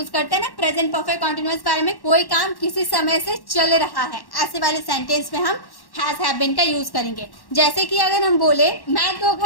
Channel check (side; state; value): right; late; 1.1 ms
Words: करते हैं ना प्रेजेंट परफेक्ट कॉन्टिन्यूअस वाले में, कोई काम किसी समय से चल रहा है, ऐसे वाले सेंटेंस में हम हैज हैव बीन का यूज करेंगे। जैसे कि अगर हम बोले मैं 2